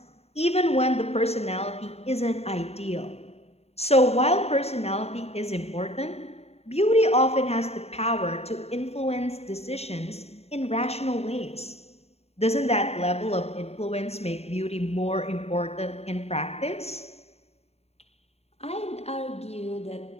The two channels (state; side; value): late; right; 0.30 ms